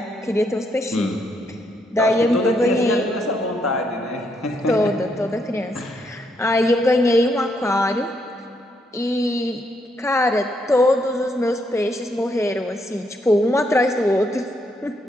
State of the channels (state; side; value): normal; both; correlation 0.76